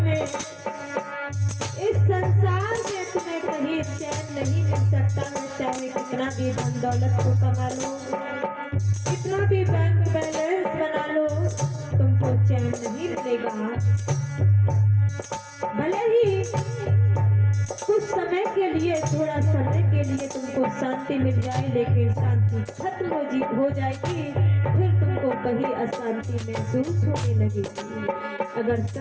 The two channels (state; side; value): identical; both; correlation 1.00